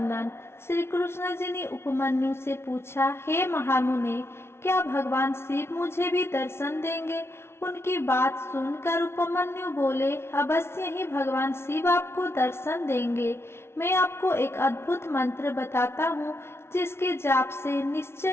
श्री कृष्ण जी ने उपमन्यु से पूछा, हे महामुने, क्या भगवान शिव मुझे भी दर्शन देंगे? उनकी बात सुनकर उपमन्यु बोले, अवश्य ही भगवान शिव आपको दर्शन देंगे। मैं आपको एक अद्भुत मंत्र बताता हूँ, जिसके जाप से निश्चय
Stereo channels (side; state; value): right; late; 0.12 ms